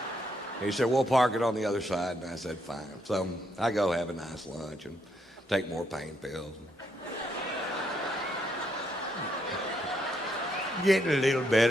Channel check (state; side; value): normal; both; correlation 0.76